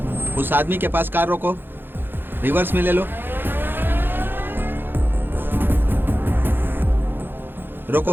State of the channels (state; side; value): late; left; 0.099 ms